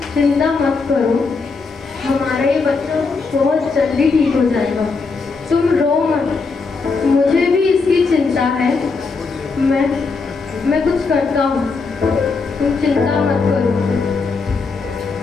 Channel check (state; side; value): quieter; right; 4.4 dB